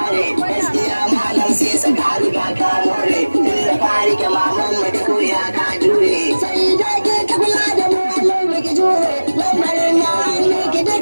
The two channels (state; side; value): inverted; both; correlation -1.00